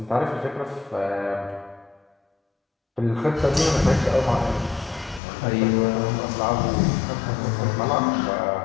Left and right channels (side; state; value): right; drops out; at 5.2 s